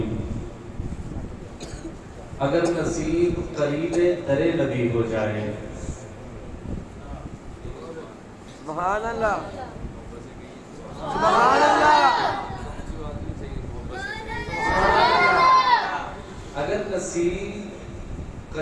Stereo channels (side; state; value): both; identical; correlation 1.00